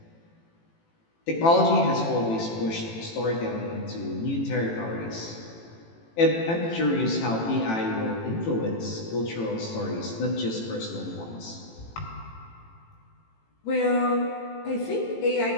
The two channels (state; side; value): late; right; 18 ms